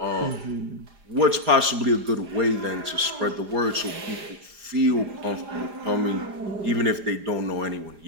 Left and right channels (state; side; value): late; left; 4.9 ms